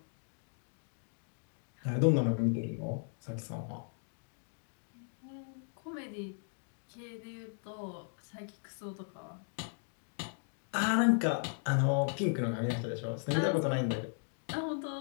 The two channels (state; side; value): silent; right; 53 dB below the other